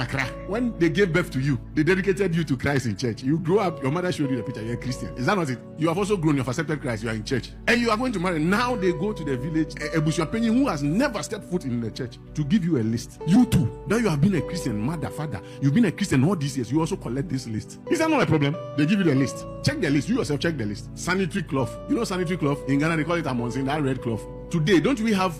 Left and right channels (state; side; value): identical; both; correlation 1.00